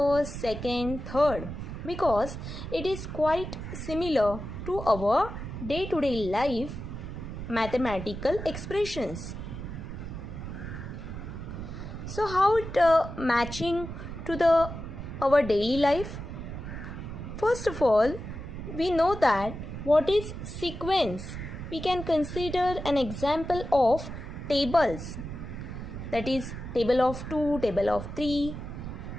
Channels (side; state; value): right; noise; rumble, 8 dB below the sound